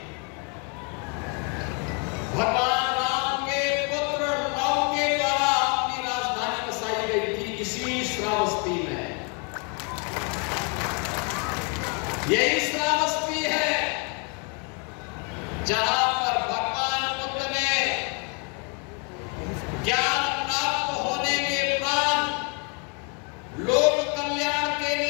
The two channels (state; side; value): quieter; right; 36.4 dB